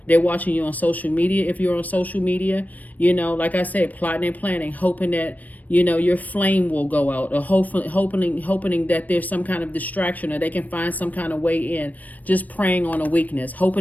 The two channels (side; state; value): right; late; 0.079 ms